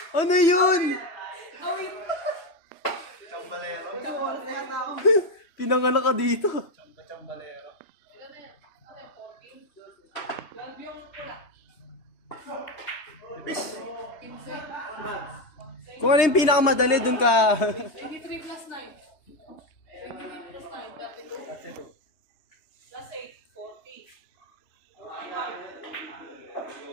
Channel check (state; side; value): late; right; 3.3 ms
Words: Ano yun? Awit! Chambalero. Chambalero kaya tao. Pinanganak ka dito. Chambalero. Ilan na yan? Ano yan? 14? 12 yung pula. Bis. 15? Kung ano yung pinakamadali, dun ka. 23 plus 9. 23 plus 9, 32. That's it. Plus 8, 40.